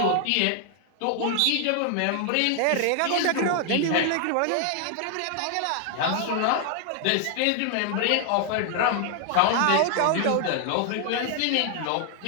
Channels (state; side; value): different; both; correlation 0.00